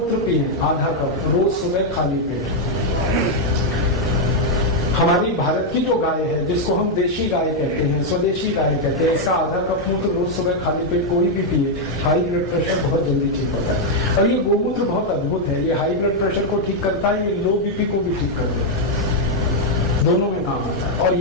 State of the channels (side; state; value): both; normal; correlation 0.00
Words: पिए आधा कप रोज सुबह खाली पेट। हमारी भारत की जो गाय है, जिसको हम देशी गाय कहते हैं, स्वदेशी गाय कहते हैं, इसका आधा कप मूत्र रोज सुबह खाली पेट कोई भी पिए, हाई ब्लड प्रेशर बहुत जल्दी ठीक होता है। और ये गोमूत्र बहुत अद्भुत है, ये हाई ब्लड प्रेशर को ठीक करता है, ये लो बीपी को भी ठीक कर देता है, दोनों में काम आता है। और